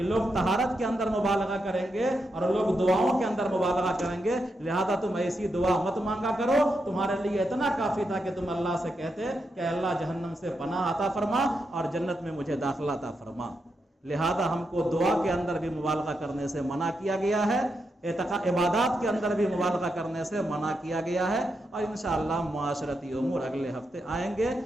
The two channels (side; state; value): both; normal; correlation 0.84